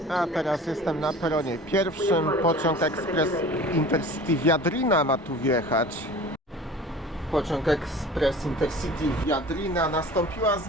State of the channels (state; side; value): normal; both; correlation 0.41